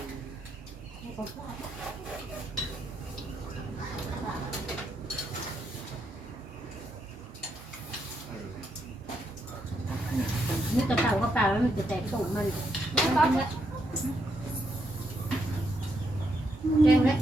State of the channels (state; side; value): normal; both; correlation 0.79